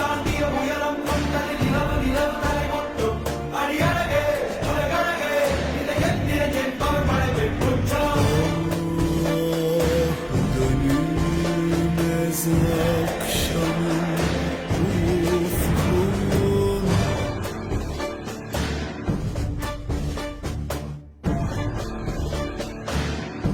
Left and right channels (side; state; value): both; identical; correlation 1.00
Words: உயரம் கொண்டது நிலவு நிலவு தலை கொட்டும் அடியழகே உலகழகே இந்த எந்திர என்பவர் படைவை குற்றம்